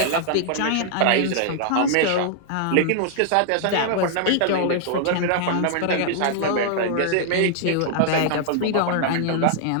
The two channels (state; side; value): different; both; correlation -0.01